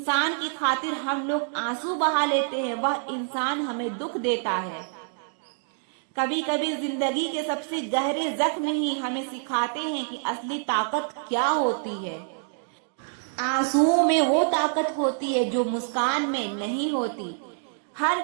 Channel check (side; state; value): left; silent; 60 dB below the other